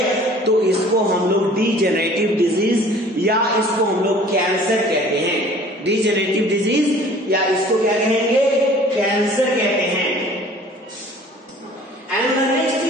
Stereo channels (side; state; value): both; normal; correlation 0.50